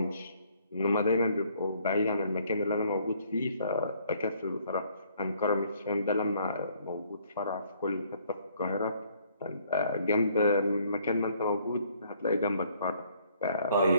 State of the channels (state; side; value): inverted; both; correlation -0.64